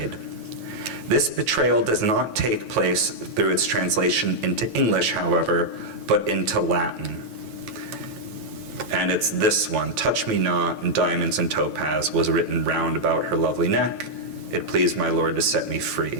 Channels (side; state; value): left; late; 9.1 ms